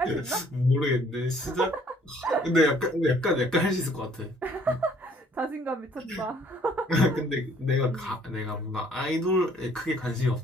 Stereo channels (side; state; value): both; normal; correlation 0.60